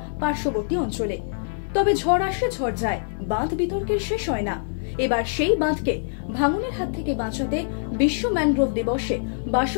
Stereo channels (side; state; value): right; silent; digital silence